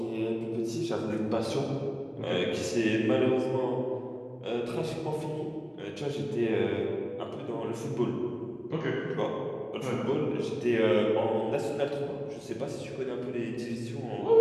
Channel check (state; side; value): identical; both; correlation 1.00